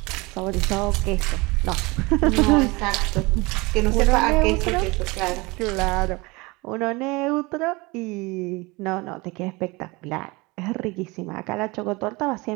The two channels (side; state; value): left; quieter; 24.5 dB